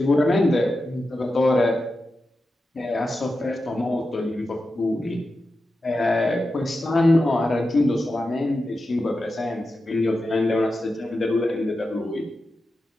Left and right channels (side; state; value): both; normal; correlation 0.91